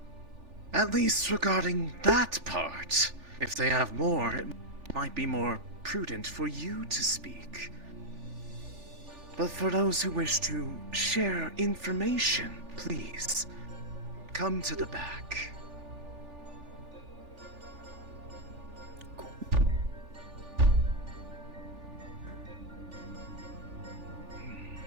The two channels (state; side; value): late; left; 3.4 ms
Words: At least regarding that part. If they have more, it might be more prudent for you to speak. But for those who wish to share information, please, come to the back.